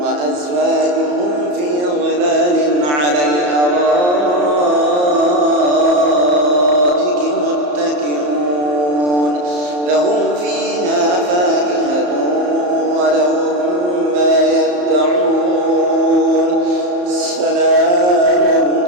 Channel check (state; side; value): late; left; 34 ms